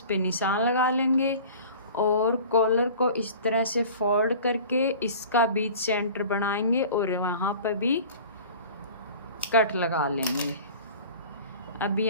पे निशान लगा लेंगे और कॉलर को इस तरह से फोल्ड करके इसका बीच सेंटर बनाएंगे और वहाँ पर भी कट लगा लेंगे। अब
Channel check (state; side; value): inverted; both; correlation -0.42